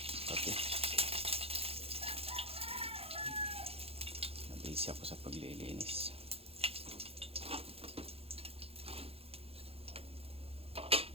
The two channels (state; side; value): late; left; 0.28 ms